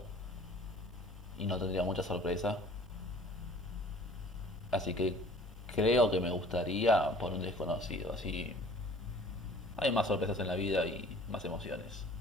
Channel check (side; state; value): both; normal; correlation 0.50